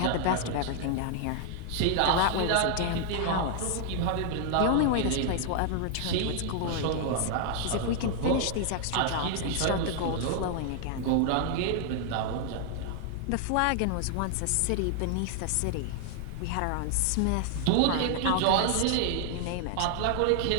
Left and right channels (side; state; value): both; different; correlation 0.00